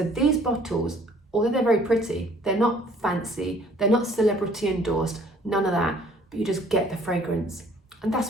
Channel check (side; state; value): both; normal; correlation 0.57